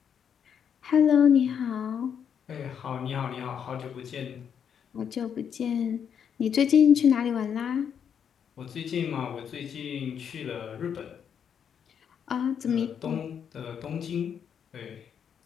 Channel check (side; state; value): right; quieter; 7.9 dB